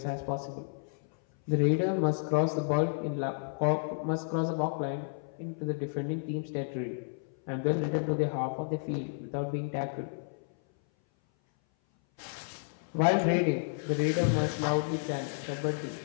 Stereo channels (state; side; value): silent; right; 57 dB below the other